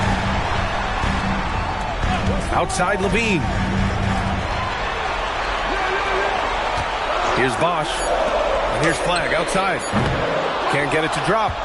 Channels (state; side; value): identical; both; correlation 1.00